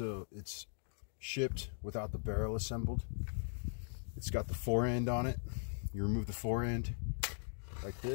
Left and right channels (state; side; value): silent; right; digital silence